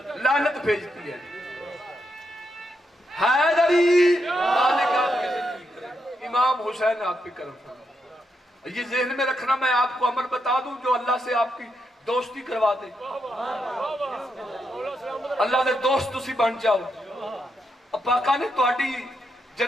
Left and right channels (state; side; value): normal; both; correlation 0.82